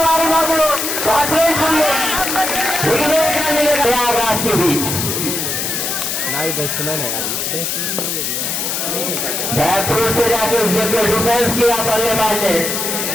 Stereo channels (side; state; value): left; noise; hiss, 1 dB below the sound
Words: मौजूद प्रयागराज के बीच बैट्समैन है यार, बैकफुट से जाके उसके डिफेंस किया बल्लेबाज ने